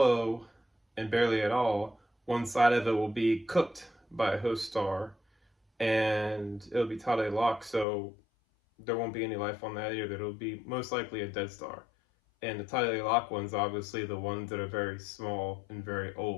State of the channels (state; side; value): drops out; right; at 7.9 s